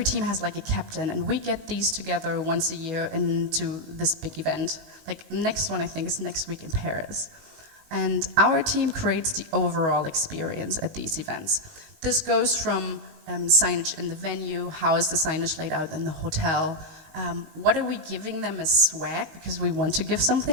team has like a captain, and we get these together once a year into this big event. Like next one I think is next week in Paris. And our team creates the overall experience at these events. This goes from signage in the venue, how is the signage laid out in the hotel, what are we giving them as swag, because we want to give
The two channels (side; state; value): left; late; 19 ms